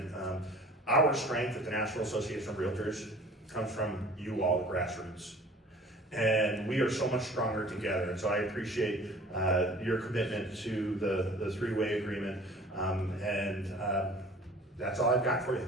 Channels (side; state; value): both; normal; correlation 0.47